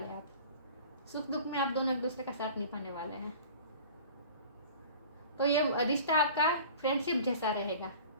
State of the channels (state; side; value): inverted; both; correlation -0.43